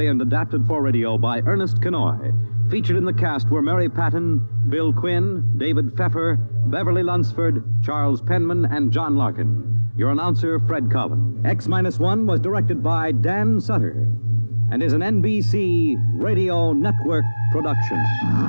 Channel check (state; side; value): inverted; both; correlation -1.00